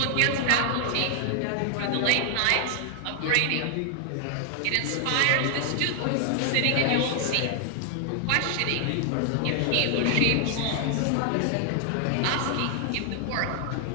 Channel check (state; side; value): different; both; correlation 0.00